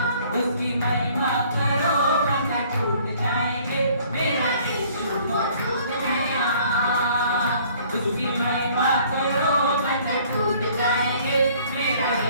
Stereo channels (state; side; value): inverted; both; correlation -0.57